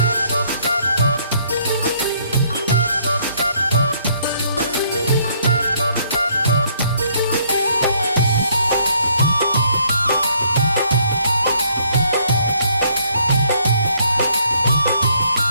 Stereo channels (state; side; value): inverted; both; correlation -0.66